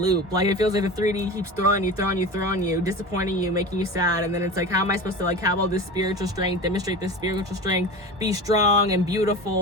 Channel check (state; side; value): normal; both; correlation 0.31